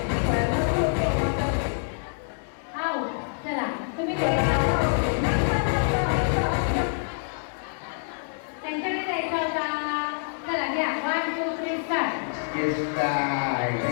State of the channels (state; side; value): silent; right; digital silence